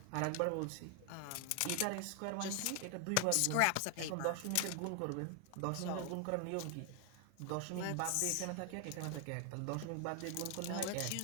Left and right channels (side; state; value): both; different; correlation 0.00